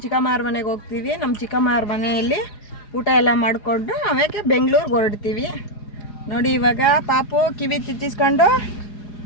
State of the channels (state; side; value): late; right; 4.8 ms